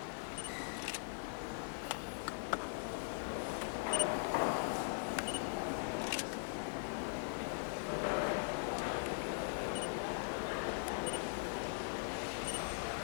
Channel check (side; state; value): right; silent; digital silence